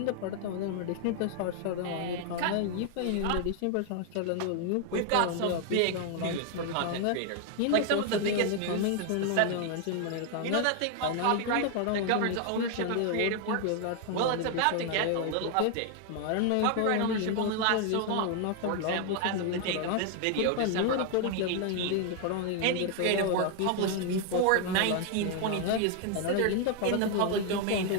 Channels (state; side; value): different; both; correlation 0.00